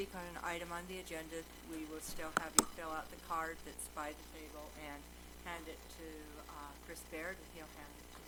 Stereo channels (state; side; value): identical; both; correlation 1.00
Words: on an item on the agenda, we will still have you fill out the card that's by the table and hand it to Chris Baird, and he'll hand it to